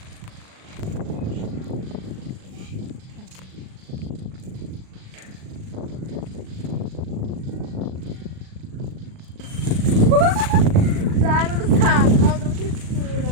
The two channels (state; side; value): late; left; 38 ms